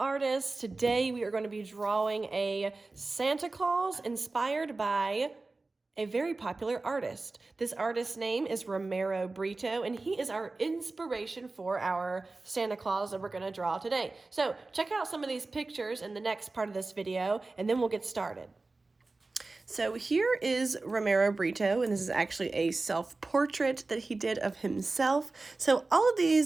Today we are going to be drawing a Santa Claus inspired by a very popular artist. This artist's name is Romero Britto, and he is our inspiration for our Santa Claus that we're going to draw today. So check out some of these pictures in the next part of this video, and then we'll get started. So here is Romero Britto, and this is actually a self-portrait that he did of himself. So all of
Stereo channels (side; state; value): left; quieter; 3.4 dB